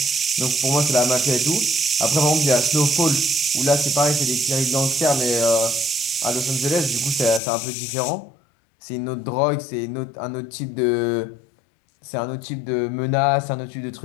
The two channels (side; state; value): right; drops out; at 7.4 s